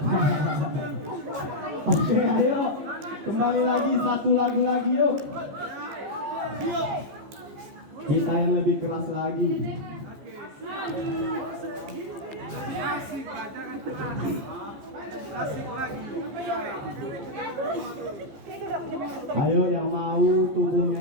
Oke, ayo. Kembali lagi, satu lagu lagi yuk. Kita yang lebih keras lagi. Ayo yang mau tubuhnya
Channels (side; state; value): left; late; 15 ms